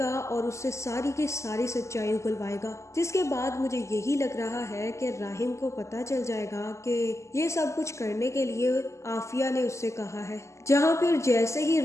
और उससे सारी की सारी सच्चाई उगलवाएगा। जिसके बाद मुझे यही लग रहा है कि राहिम को पता चल जाएगा कि ये सब कुछ करने के लिए आफिया ने उससे कहा है। जहाँ फिर जैसे ही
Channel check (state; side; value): late; right; 0.14 ms